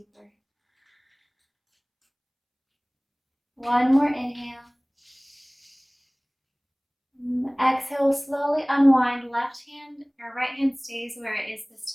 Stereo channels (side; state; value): both; identical; correlation 1.00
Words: One more inhale. Exhale, slowly unwind. Left hand or right hand stays where it is this